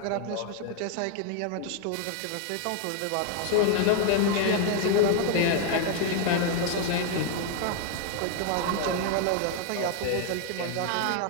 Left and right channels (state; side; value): different; both; correlation 0.00